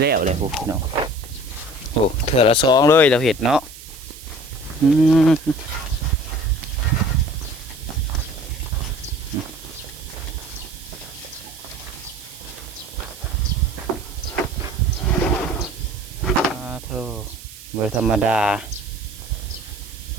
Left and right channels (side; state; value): right; noise; hiss, 16 dB below the sound